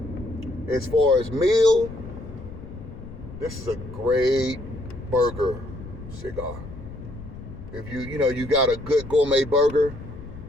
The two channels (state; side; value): noise; left; rumble, 13 dB below the sound